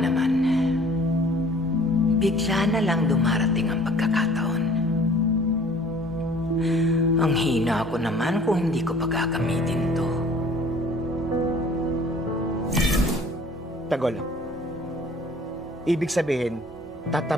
Bigla na lang dumarating ang pagkakataon. Ang hina ko naman kung hindi ko pagkakamitin to. Tagol. Ibig sabihin,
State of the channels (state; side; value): normal; both; correlation 0.52